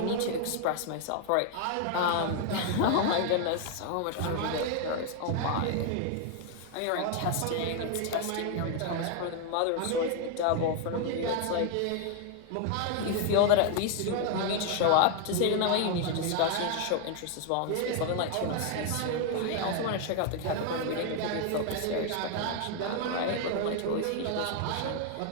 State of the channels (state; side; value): different; both; correlation 0.00